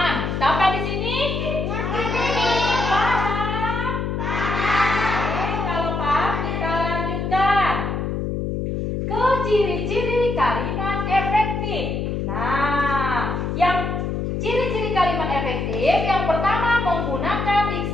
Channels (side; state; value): left; noise; hum, 2 dB below the sound